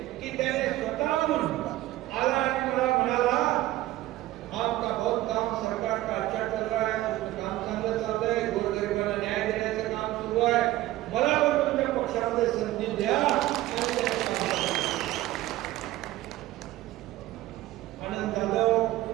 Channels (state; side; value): quieter; left; 16.0 dB